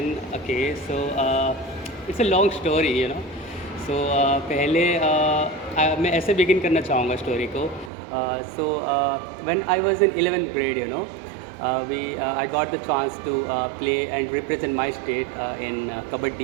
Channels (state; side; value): drops out; left; at 7.9 s